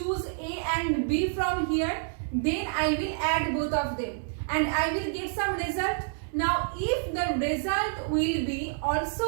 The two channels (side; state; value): left; silent; 59 dB below the other